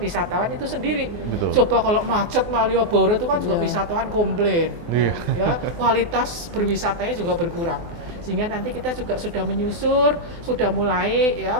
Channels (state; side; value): late; left; 24 ms